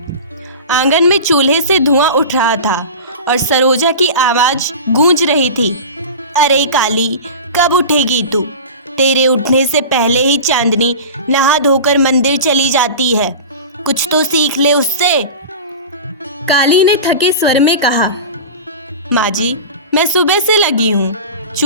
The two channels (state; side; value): inverted; both; correlation -0.31